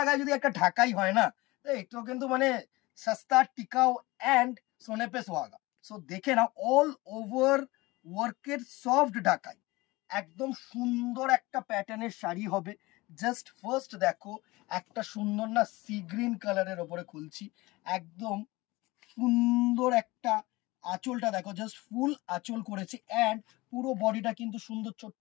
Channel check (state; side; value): quieter; right; 21.3 dB